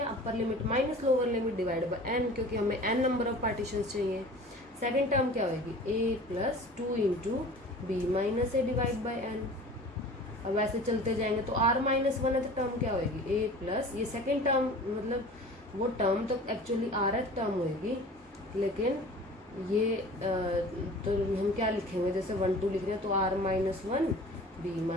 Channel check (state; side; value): normal; both; correlation 0.42